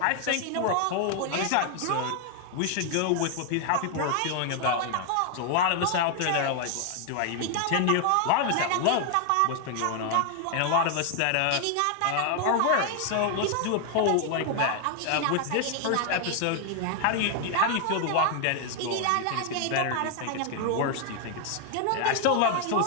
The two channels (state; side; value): different; both; correlation 0.00